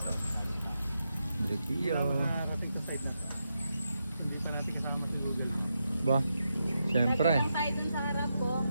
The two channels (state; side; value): inverted; both; correlation -0.85